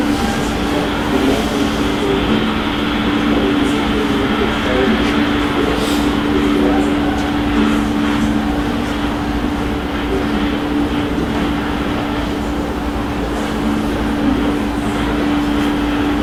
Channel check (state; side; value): identical; both; correlation 1.00